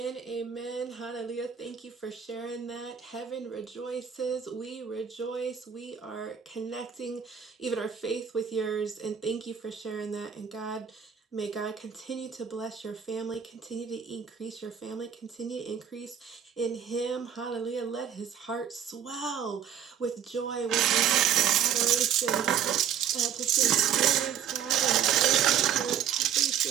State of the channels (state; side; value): quieter; left; 8.6 dB